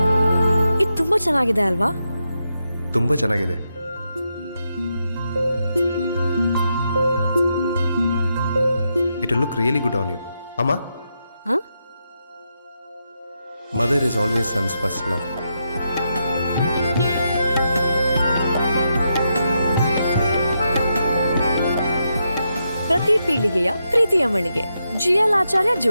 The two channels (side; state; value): both; inverted; correlation -0.84